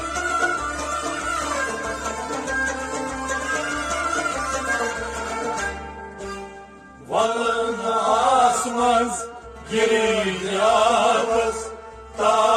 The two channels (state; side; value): identical; both; correlation 1.00